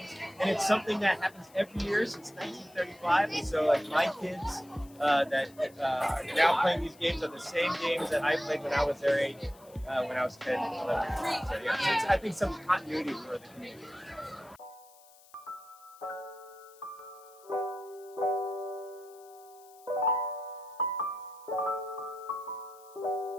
and it's something that happens every year since 1935. And so, like my kids that are now playing these games are the same games that I played when I was their age, when I was 10, 11. So yeah, it's, I think some continuity for the community.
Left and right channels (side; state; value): left; noise; hiss, 25 dB below the sound